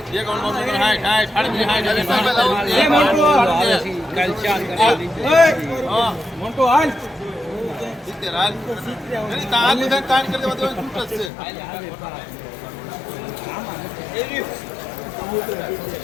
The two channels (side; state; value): right; drops out; at 11.3 s